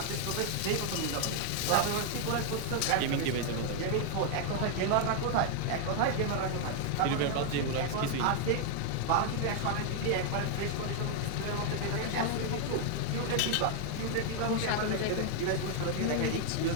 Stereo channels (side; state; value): both; different; correlation 0.00